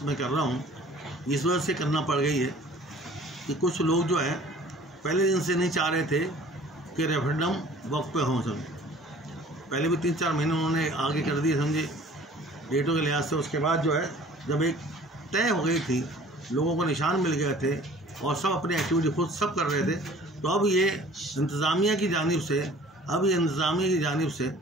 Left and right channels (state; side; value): normal; both; correlation 0.50